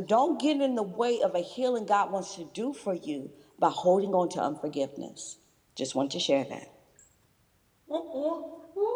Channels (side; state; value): both; identical; correlation 1.00